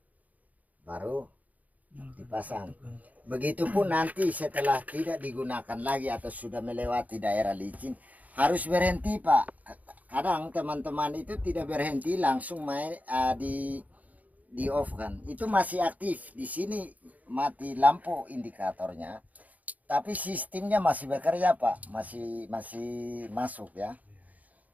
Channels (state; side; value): late; left; 0.074 ms